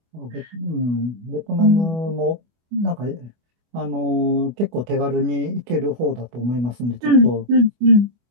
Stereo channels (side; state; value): left; late; 25 ms